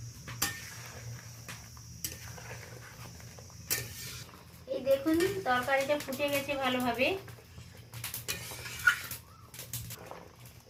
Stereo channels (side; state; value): both; identical; correlation 1.00